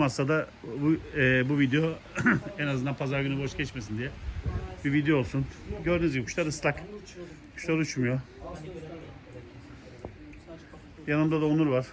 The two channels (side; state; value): both; identical; correlation 1.00